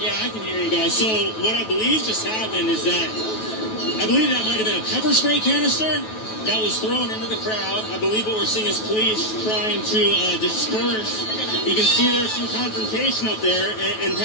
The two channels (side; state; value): right; late; 9.2 ms